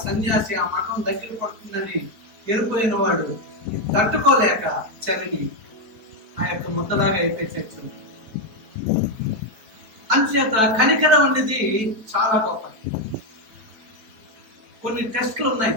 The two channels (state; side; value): late; left; 4.6 ms